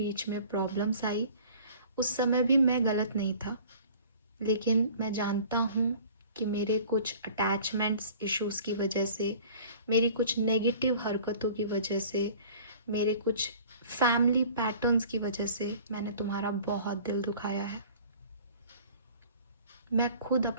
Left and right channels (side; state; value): both; inverted; correlation -0.48